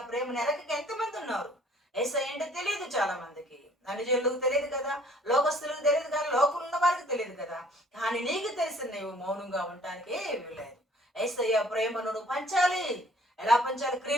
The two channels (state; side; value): normal; both; correlation 0.56